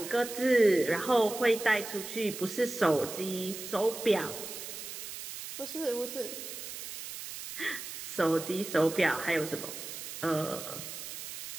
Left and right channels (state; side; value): noise; right; hiss, 9 dB below the sound